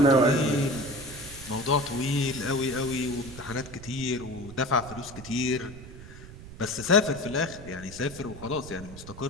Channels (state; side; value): noise; right; rumble, 15 dB below the sound